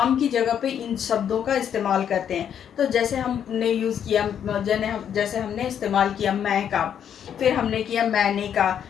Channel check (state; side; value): quieter; right; 8.9 dB